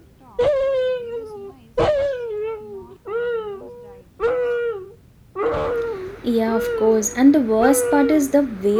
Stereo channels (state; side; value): identical; both; correlation 1.00